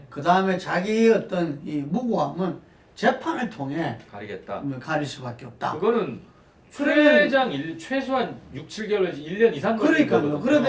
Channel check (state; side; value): identical; both; correlation 1.00